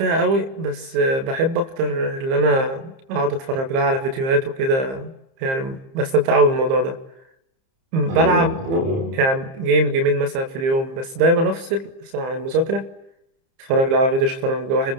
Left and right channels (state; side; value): late; left; 30 ms